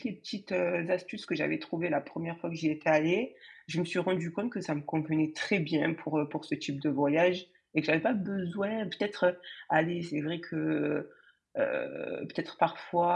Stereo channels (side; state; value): both; identical; correlation 1.00